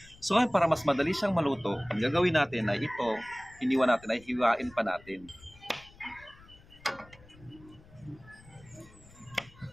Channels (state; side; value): noise; left; rumble, 24 dB below the sound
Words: So ngayon, para mas madali siyang maluto, ang gagawin natin ay ito, iniwan natin ay hiwain pa natin.